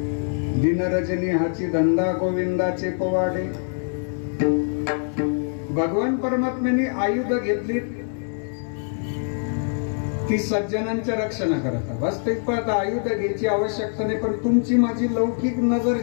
दिनरजनी हाची धंदा, गोविंदाचे पोवाडे. भगवान परमात्म्याने आयुध घेतली ती सज्जनांच्या रक्षणाकरता. वास्तविक पाहता आयुध घ्यायची आवश्यकता नाही, पण तुमची माझी लौकिक नजर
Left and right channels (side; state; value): right; silent; 63 dB below the other